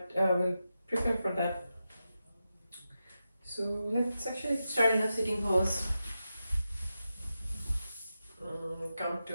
we'll prepare for that. So let's actually start in a sitting pose. Come to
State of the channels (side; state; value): both; inverted; correlation -0.90